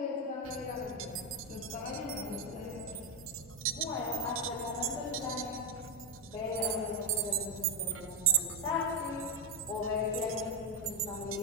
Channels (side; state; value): both; normal; correlation 0.05